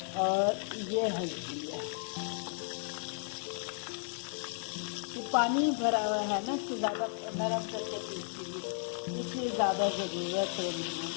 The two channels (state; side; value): silent; right; 55 dB below the other